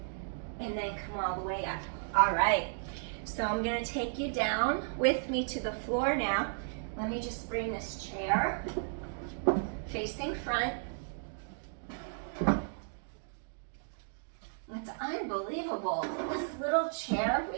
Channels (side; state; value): left; silent; digital silence